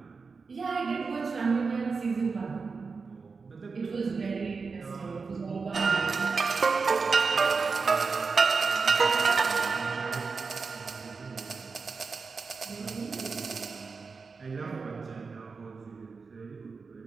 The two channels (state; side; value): quieter; left; 4.7 dB